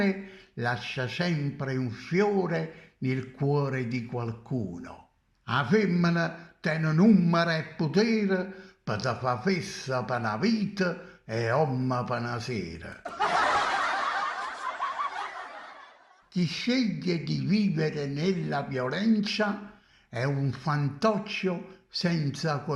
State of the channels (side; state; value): both; identical; correlation 1.00